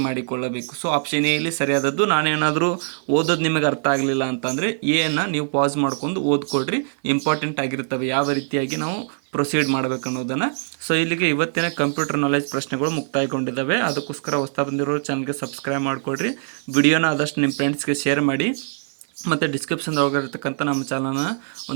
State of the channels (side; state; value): left; silent; 63 dB below the other